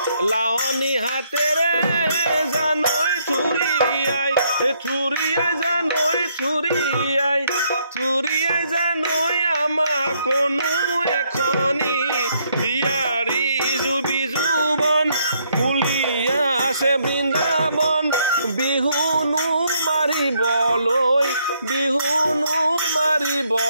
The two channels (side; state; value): both; inverted; correlation -0.72